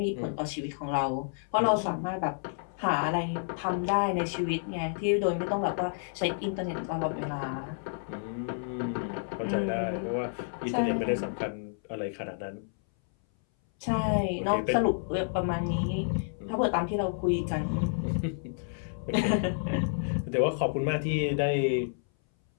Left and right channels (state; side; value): silent; right; 58 dB below the other